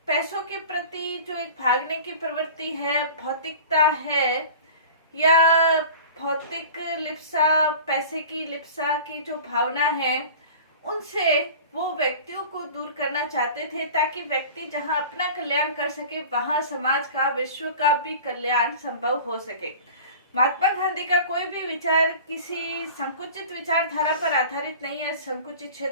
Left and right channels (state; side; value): inverted; both; correlation -0.39